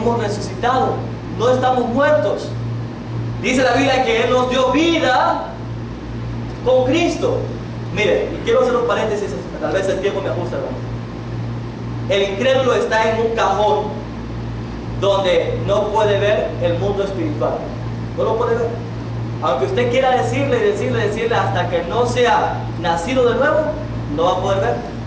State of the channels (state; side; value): identical; both; correlation 1.00